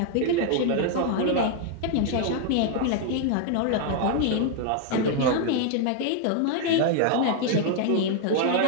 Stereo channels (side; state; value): both; different; correlation 0.00